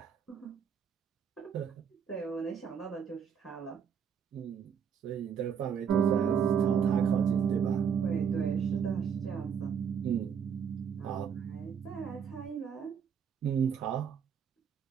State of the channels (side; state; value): left; quieter; 7.4 dB